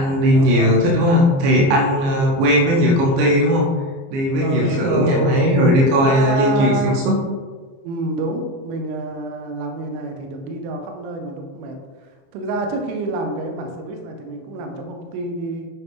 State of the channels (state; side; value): late; left; 29 ms